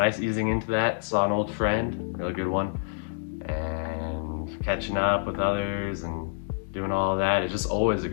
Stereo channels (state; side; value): silent; right; digital silence